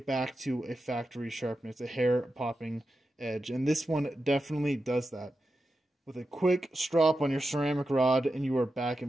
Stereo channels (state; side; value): normal; both; correlation 0.90